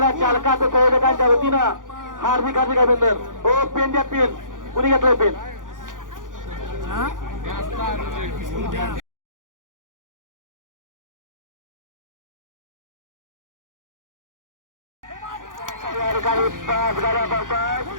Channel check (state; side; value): late; left; 0.89 ms